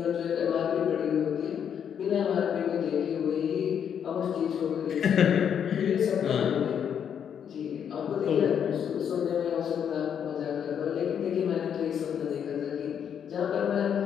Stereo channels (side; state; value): right; quieter; 8.3 dB